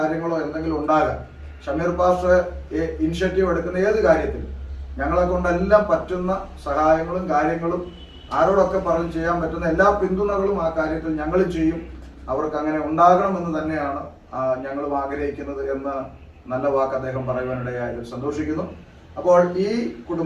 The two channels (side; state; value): both; identical; correlation 1.00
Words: എന്തെങ്കിലും ഉണ്ടാകാം, ഷമീർ പാസ്റ്റർ ഇനിഷ്യേറ്റീവ് എടുക്കുന്ന ഏത് കാര്യത്തിലും ഞങ്ങളെ കൊണ്ടെല്ലാം പറ്റുന്ന സഹായങ്ങളും കാര്യങ്ങളും ആരോടൊക്കെ പറഞ്ഞ് ചെയ്യാൻ പറ്റുന്ന എല്ലാ പിന്തുണകളും ആ കാര്യത്തിൽ ഞങ്ങൾ ചെയ്യും, അവർക്ക് അങ്ങനെ ഉണ്ടാകണമെന്ന് തന്നെയാണ് ഞങ്ങളും ആഗ്രഹിക്കുന്നത് എന്ന് നല്ല വാക്ക് അദ്ദേഹം പറയുവാനിടയായതിൽ സന്തോഷിക്കുന്നു. അപ്പോൾ ഈ